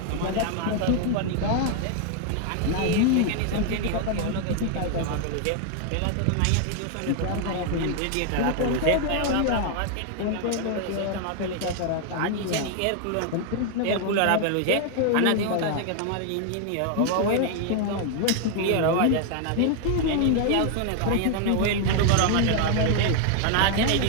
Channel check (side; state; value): both; different; correlation 0.00